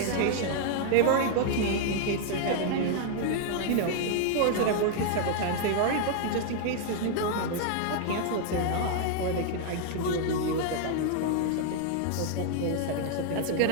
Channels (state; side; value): different; both; correlation -0.01